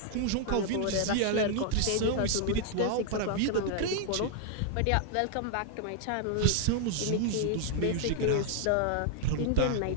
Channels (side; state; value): both; different; correlation 0.00